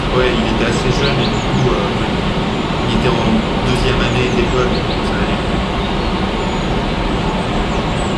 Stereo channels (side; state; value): both; identical; correlation 1.00